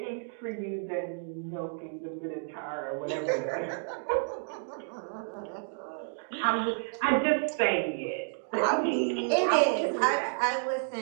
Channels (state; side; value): silent; left; digital silence